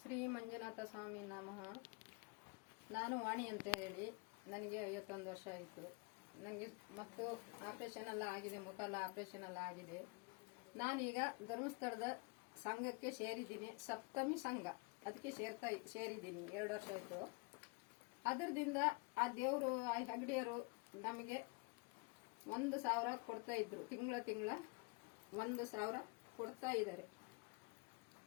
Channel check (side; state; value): right; quieter; 30.3 dB